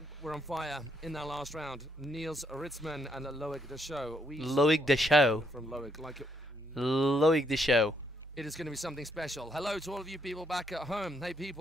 Loic Deschaux. Loic Deschaux. It is going to be something special. Hello to all of you people back at home. Hey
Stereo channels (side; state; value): both; normal; correlation 0.73